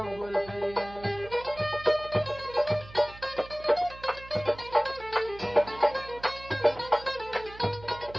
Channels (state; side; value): noise; right; hum, 18 dB below the sound